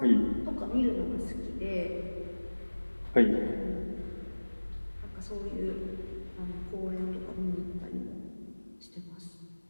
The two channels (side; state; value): both; inverted; correlation -1.00